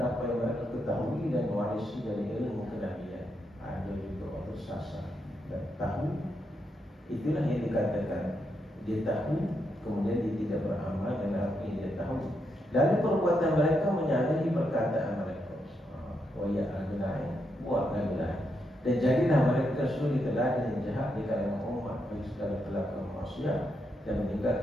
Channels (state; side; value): normal; both; correlation 0.81